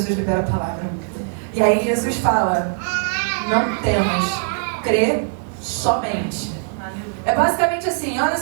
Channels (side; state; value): left; silent; 65 dB below the other